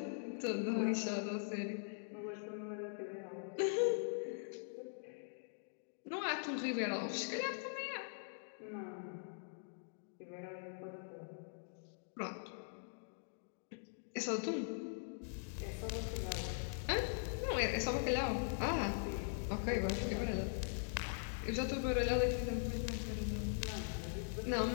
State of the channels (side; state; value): right; silent; digital silence